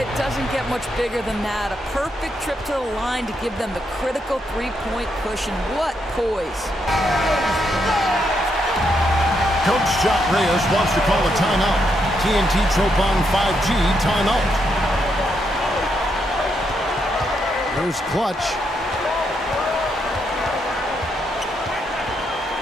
doesn't get much bigger than that. A perfect trip to the line to give them the critical three-point push, and what poise. Coach Jock Reyes wants to call a timeout. TNT Tropang 5G timeout. Here's Clutch.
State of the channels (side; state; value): both; normal; correlation 0.79